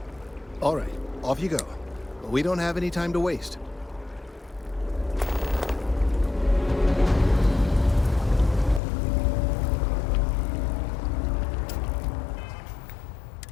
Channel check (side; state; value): right; drops out; at 8.8 s